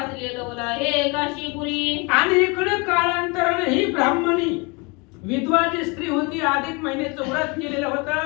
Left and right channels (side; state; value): right; quieter; 28.6 dB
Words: लवला हे काशीपुरी. आणि इकडे काळांतराने ही ब्राह्मणी विधवा जी स्त्री होती, अधिक महिन्याचं व्रत केलेलं